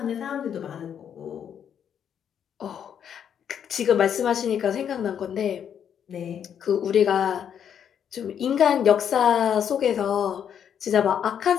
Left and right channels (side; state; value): right; quieter; 8.6 dB